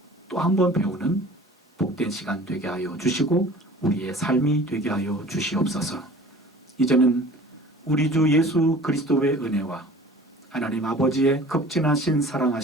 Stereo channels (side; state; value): both; normal; correlation 0.45